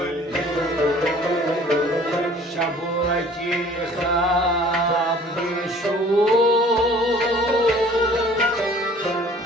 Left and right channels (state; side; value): normal; both; correlation 0.51